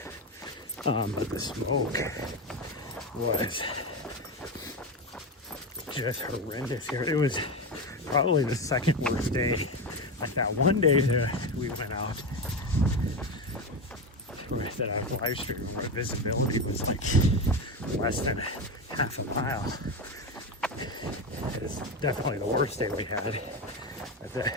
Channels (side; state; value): both; normal; correlation 0.17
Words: But the smoke was just horrendous here. It was probably the second worst day. Like that one day that we went out, that I live streamed, where visibility was like less than half a mile. It's definitely the worst day we had.